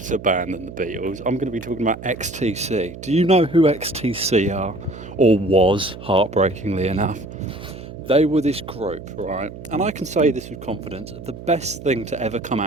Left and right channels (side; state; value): right; noise; hum, 13 dB below the sound